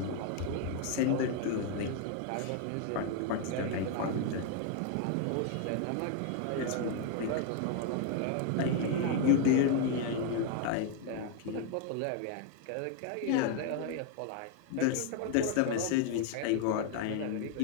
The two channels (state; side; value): different; both; correlation 0.01